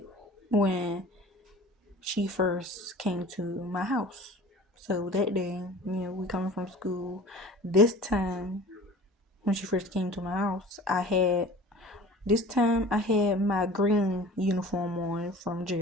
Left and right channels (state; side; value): normal; both; correlation 0.43